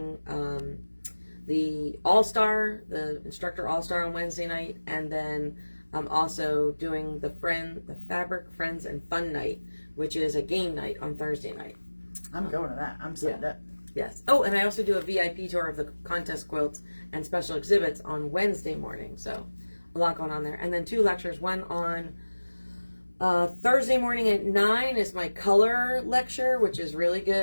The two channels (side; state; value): both; inverted; correlation -1.00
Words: the All-Star, the Instructor All-Star on Wednesday night, and then I'm also doing the Fabric Friends and Fun Night, which is a game night on Thursday night. I'm going to that. I'm signed up. Yes. Oh, and I also do a VIP tour of the contest quilts and special exhibits on Wednesday morning. So a lot going on there. And then 2 lectures. One on Thursday morning at 9 is my color lecture, which is really